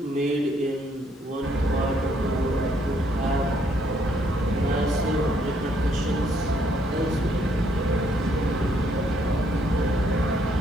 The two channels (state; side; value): normal; both; correlation 0.69